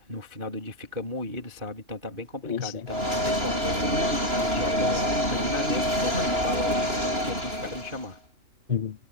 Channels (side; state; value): left; late; 2.9 ms